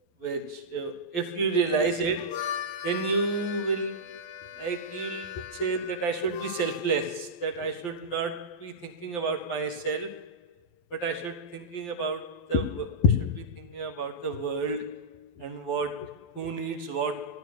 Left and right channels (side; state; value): right; late; 12 ms